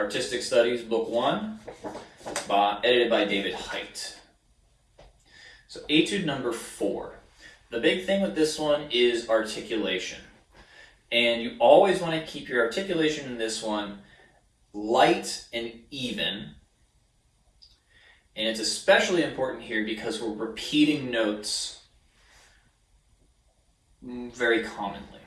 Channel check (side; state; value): both; identical; correlation 1.00